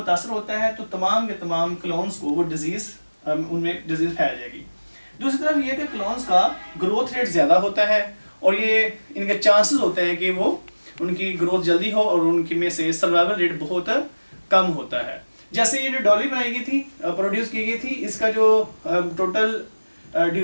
होता है तो तमाम के तमाम क्लोन्स को वो उनमें डिजीज़ फैल जाएगी। दूसरी तरफ ये कि क्लोन्स का ग्रोथ रेट ज़्यादा होता है और ये इनके चांसेस होते हैं कि वो उनकी ग्रोथ जल्दी हो और उनकी में से सर्वाइवल रेट बहुत कम होता है। जैसे ये जो डॉली बनाई गई थी, प्रोड्यूस की गई थी, इसका जो टोटल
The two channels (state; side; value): inverted; both; correlation -1.00